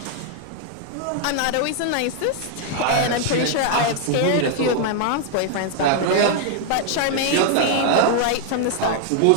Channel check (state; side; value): different; both; correlation 0.00